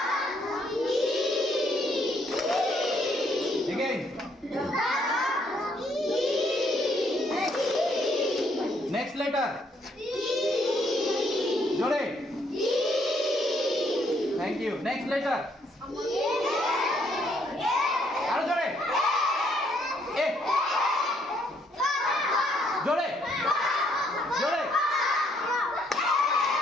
again next letter জোরে thank you next letter আরো জোরে এ জোরে জোরে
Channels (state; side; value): normal; both; correlation 0.70